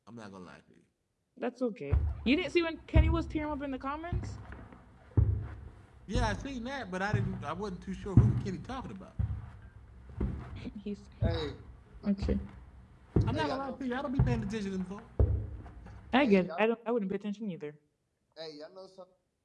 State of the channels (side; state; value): both; identical; correlation 1.00